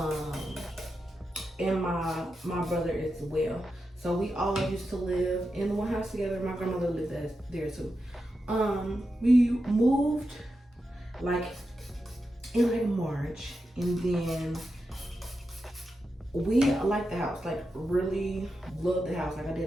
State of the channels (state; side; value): normal; both; correlation 0.89